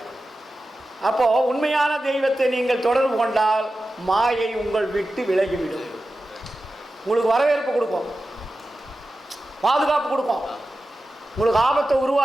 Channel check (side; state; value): both; normal; correlation 0.93